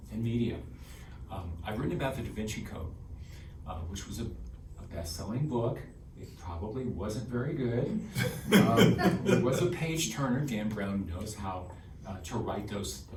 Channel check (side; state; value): both; identical; correlation 1.00